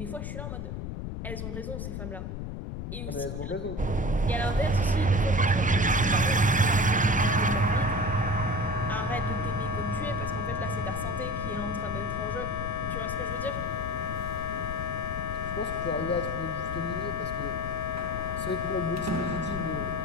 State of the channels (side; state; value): left; noise; rumble, 5 dB below the sound